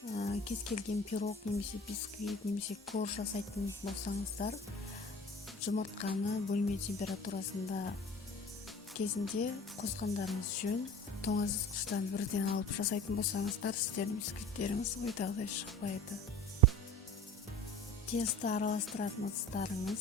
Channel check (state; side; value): normal; both; correlation 0.40